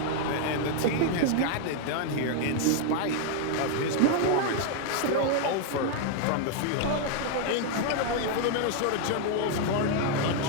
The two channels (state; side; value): different; both; correlation 0.00